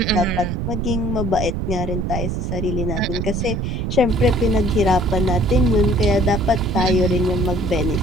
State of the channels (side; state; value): right; noise; rumble, 2 dB below the sound